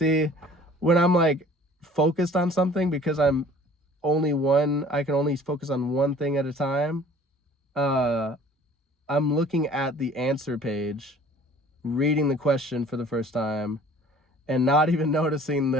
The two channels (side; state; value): both; normal; correlation 0.50